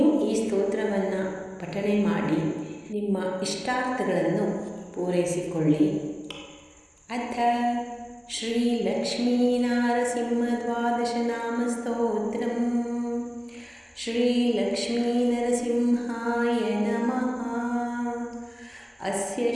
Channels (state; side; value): identical; both; correlation 1.00